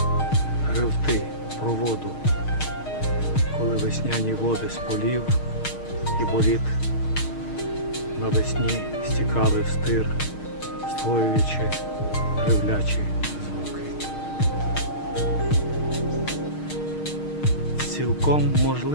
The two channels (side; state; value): right; late; 6.5 ms